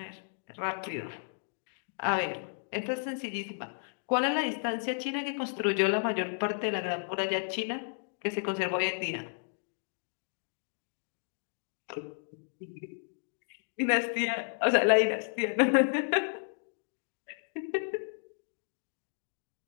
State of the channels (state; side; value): silent; right; digital silence